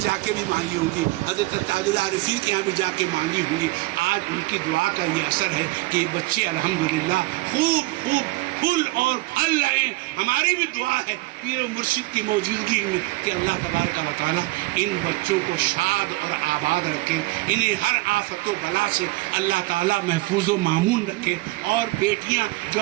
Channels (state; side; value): quieter; left; 21.3 dB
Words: کے بھی مانگی ہوں گی، حضرت تاج العارفین کے یہاں بھی جا کے مانگی ہوں گی۔ آج ان کی دعا کا یہ اثر ہے کہ بچے الحمدللہ خوب پھول اور پھل رہے ہیں۔ ہماری بھی دعا ہے پیر مرشد کی موجودگی میں کہ اللہ تبارک و تعالیٰ ان بچوں کو شاد اور آباد رکھے، انہیں ہر آفت و بلا سے اللہ تعالیٰ محفوظ و معمون رکھے۔ اور بیٹیاں جو